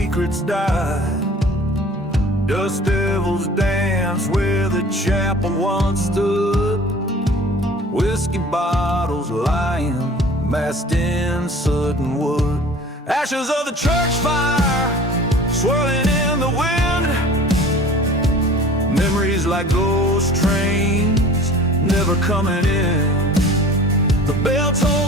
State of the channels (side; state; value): both; normal; correlation 0.45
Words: die. Dust devils dance where the chapel once stood, whiskey bottles lying massed in soot and wood. Ashes of the church fire swirling in the wind, memories like ghost trains never coming in. The bell